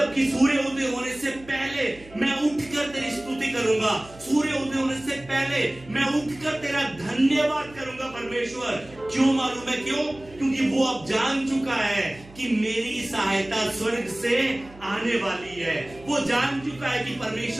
कि सूर्य उदय होने से पहले मैं उठकर तेरी स्तुति करूंगा, सूर्य उदय होने से पहले मैं उठकर तेरा धन्यवाद करूंगा परमेश्वर। क्यों मालूम है क्यों? क्योंकि वो अब जान चुका है कि मेरी सहायता स्वर्ग से आने वाली है। वो जान चुका है कि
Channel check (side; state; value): right; noise; hum, 21 dB below the sound